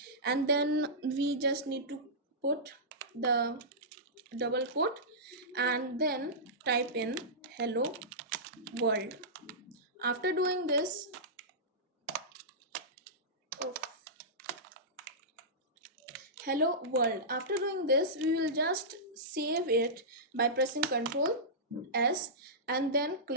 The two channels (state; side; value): normal; both; correlation -0.15